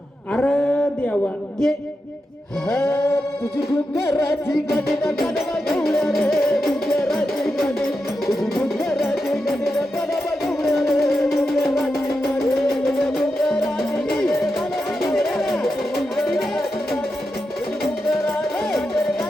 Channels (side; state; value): both; normal; correlation 0.88